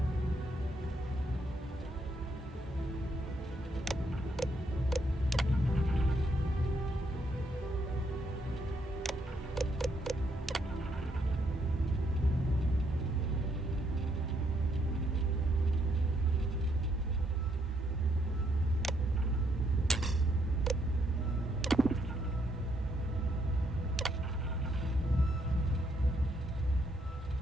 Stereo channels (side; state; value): both; normal; correlation 0.73